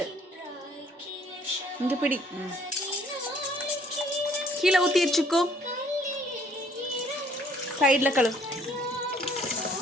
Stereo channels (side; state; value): both; normal; correlation 0.61